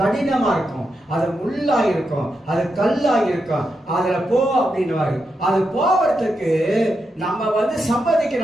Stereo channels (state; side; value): normal; both; correlation 0.85